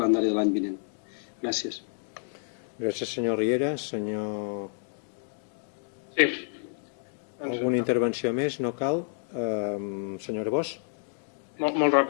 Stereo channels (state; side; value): silent; right; 58 dB below the other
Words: de l'any vinent. Gràcies. Gràcies, senyor Riera. Senyor... Sí. Alguna intervenció més? No cal. Senyor Bosch. Molt